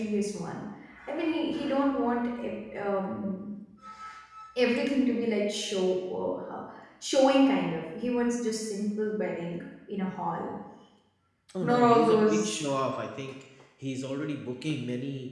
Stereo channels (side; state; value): both; identical; correlation 1.00